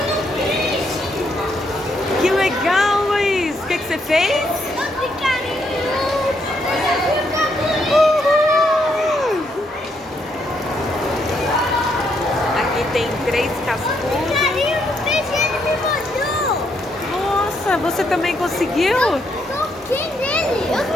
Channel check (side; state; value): both; normal; correlation 0.75